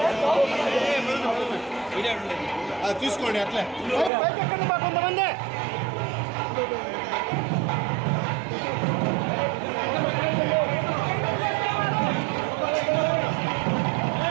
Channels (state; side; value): drops out; left; at 4.1 s